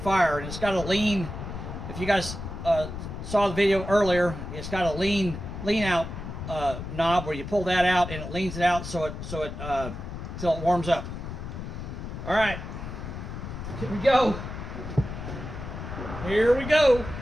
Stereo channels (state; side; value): noise; left; rumble, 8 dB below the sound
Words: And it's got a lean. If you guys saw the video earlier, it's got a lean out knob where you pull that out, and it leans it out so it till it warms up. All right, here we go. Here we go.